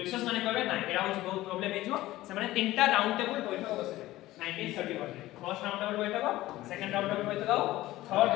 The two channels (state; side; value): quieter; right; 16.6 dB